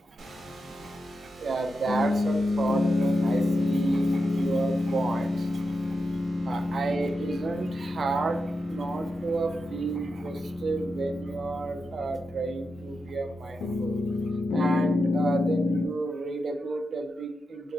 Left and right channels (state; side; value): normal; both; correlation 0.88